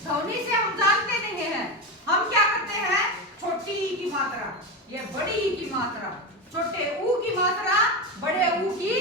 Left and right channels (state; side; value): normal; both; correlation 0.17